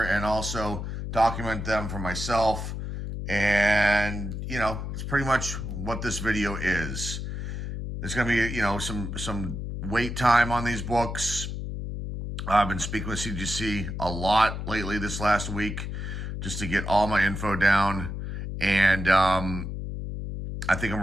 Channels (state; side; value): noise; left; hum, 5 dB below the sound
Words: and also document them for myself. And, you know, it's pretty much what this video is. There's going to be, you know, some wait time on these books. I've been speaking with CGC a lot lately this last week just to get all my info down. And I think